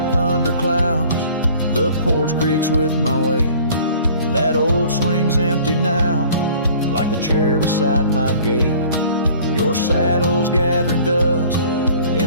thunderclouds, the porch creaks with my weight. That old swing's empty now, like the chair beside my gate. Your saddle's gathering dust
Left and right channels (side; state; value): both; inverted; correlation -0.50